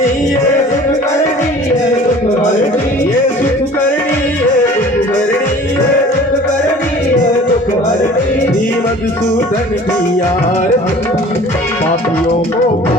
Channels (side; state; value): both; normal; correlation 0.46